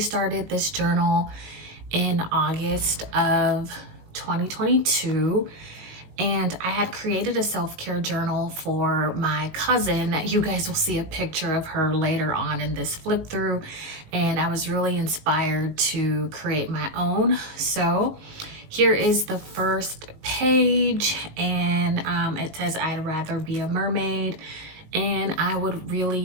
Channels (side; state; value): left; late; 19 ms